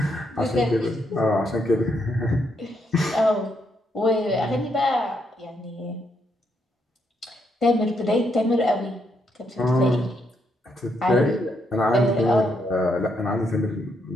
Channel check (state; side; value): normal; both; correlation 0.77